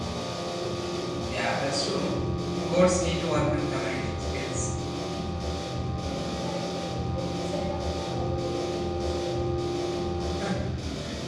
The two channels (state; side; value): identical; both; correlation 1.00